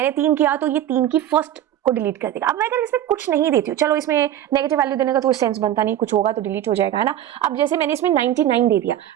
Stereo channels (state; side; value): quieter; left; 11.7 dB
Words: 3 किया तो ये 3 की फर्स्ट को डिलीट कर देगा। अब मैं अगर इसमें कुछ नहीं देती हूँ, चलो इसमें नेगेटिव वैल्यू देने का तो सेंस बनता नहीं, कुछ होगा तो डिलीट हो जाएगा, है ना। अब जैसे मैंने इसमें 99 दे दिया,